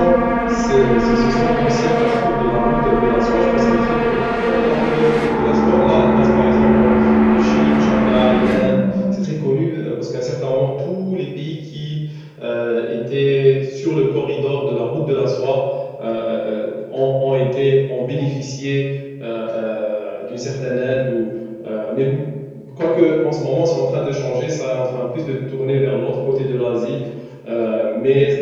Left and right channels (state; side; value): identical; both; correlation 1.00